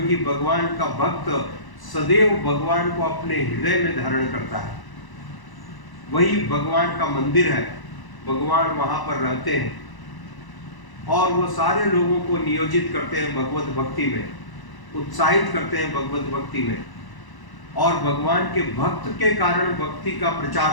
भगवान का भक्त सदैव भगवान को अपने हृदय में धारण करता है। वही भगवान का मंदिर है, भगवान वहां पर रहते हैं। और वो सारे लोगों को नियोजित करते हैं भगवत भक्ति में, उत्साहित करते हैं भगवत भक्ति में, और भगवान के भक्त के कारण भक्ति का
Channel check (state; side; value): late; right; 1.0 ms